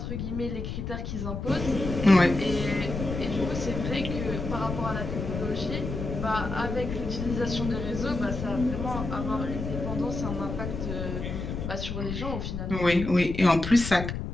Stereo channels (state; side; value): noise; left; rumble, 5 dB below the sound